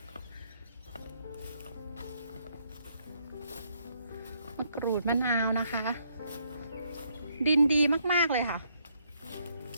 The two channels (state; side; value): inverted; both; correlation -0.73